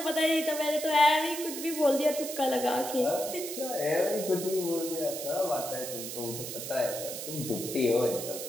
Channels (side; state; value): right; noise; hiss, 7 dB below the sound